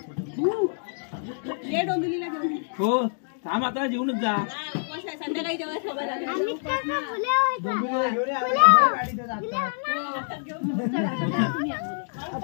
ये डोंबिवलीला घेऊन हो थांब आता जेवणच जा. संध्याकाळी जेव्हा खबर आली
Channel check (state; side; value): silent; right; digital silence